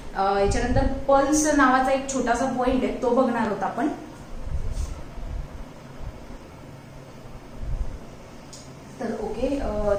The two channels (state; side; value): identical; both; correlation 1.00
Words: याच्यानंतर पल्स नावाचा एक छोटासा पॉइंट आहे तो बघणार आहोत आपण. तर okay,